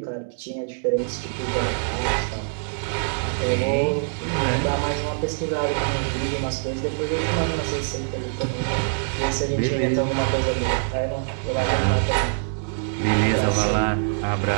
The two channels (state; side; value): silent; left; digital silence